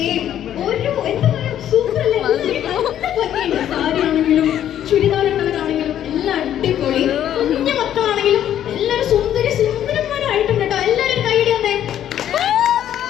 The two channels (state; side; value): quieter; right; 10.8 dB